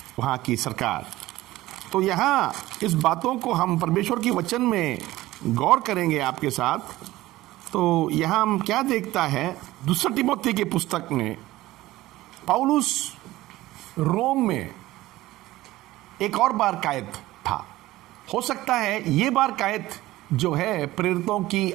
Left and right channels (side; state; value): left; quieter; 17.1 dB